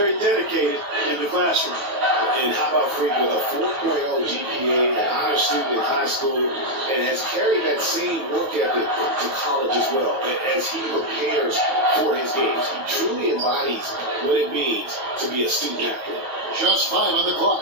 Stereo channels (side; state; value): left; late; 9.3 ms